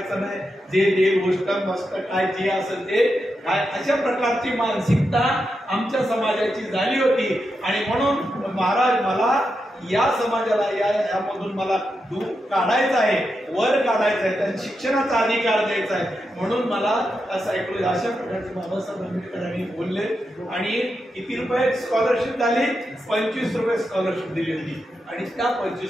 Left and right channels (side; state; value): both; normal; correlation 0.86